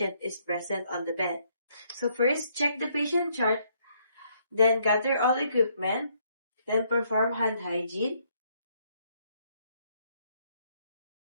is present on the bed. So first, check the patient chart, then gather all equipment, then perform hand hygiene,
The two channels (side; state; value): both; inverted; correlation -0.70